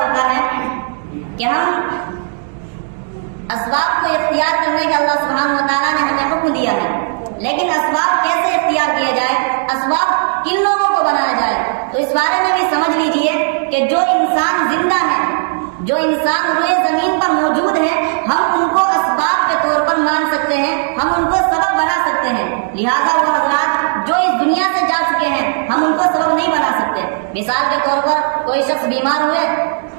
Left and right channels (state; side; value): silent; left; digital silence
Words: ہے کہ ہم اسباب کو اختیار کرنے کا اللہ سبحانہ و تعالیٰ نے ہمیں حکم دیا ہے، لیکن اسباب کیسے اختیار کیے جائے، اسباب کن لوگوں کو بنایا جائے، تو اس بارے میں بھی سمجھ لیجئے کہ جو انسان زندہ ہے، جو انسان روئے زمین پر موجود ہے، ہم ان کو اسباب کے طور پر مان سکتے ہیں، ہم ان کو سبب بنا سکتے ہیں۔ لہذا وہ حضرات جو اس دنیا سے جا چکے ہیں ہم ان کو سبب نہیں بنا سکتے۔ مثال کے طور پر کوئی شخص بیمار ہوئے،